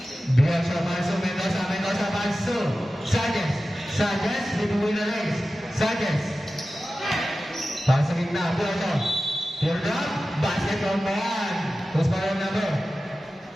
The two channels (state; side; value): normal; both; correlation 0.94